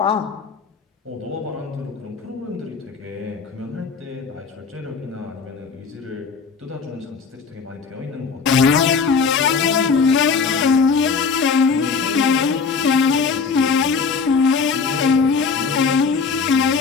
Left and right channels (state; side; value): quieter; right; 5.3 dB